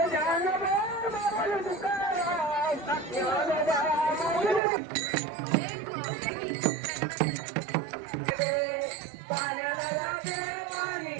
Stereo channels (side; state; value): left; drops out; at 4.6 s